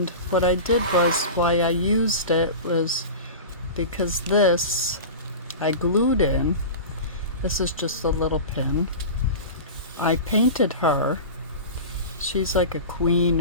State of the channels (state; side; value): inverted; both; correlation -0.30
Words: what I did was, why I used it was because this I glued in. This is just a little pin. I painted her. She's like a queen